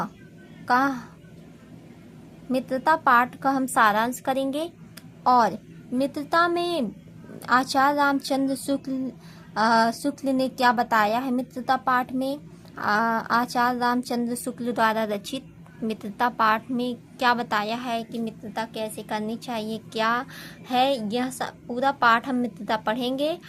पाठ का हम सारांश करेंगे और मित्रता में आचार्य रामचंद्र शुक्ल ने क्या बताया है। मित्रता पाठ में आचार्य रामचंद्र शुक्ल द्वारा रचित मित्रता पाठ में क्या बताया है कि मित्रता कैसे करनी चाहिए, क्या है यह पूरा पाठ हम मित्रता पढ़ेंगे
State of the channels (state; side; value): identical; both; correlation 1.00